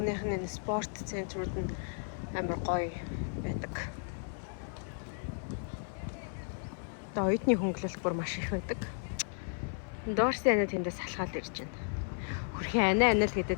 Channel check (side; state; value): right; silent; 55 dB below the other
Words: нь спорт центрууд нь амар гоё байдаг. Тэгээ оюутны хөнгөлөлт бүр маш их байдаг. Дорси анаа тэндээс салхаад ирж байна. Хөрхи анаа л